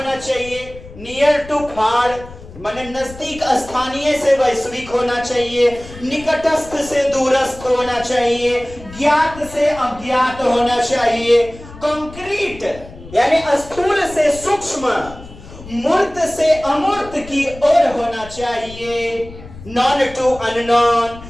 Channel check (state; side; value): noise; left; rumble, 17 dB below the sound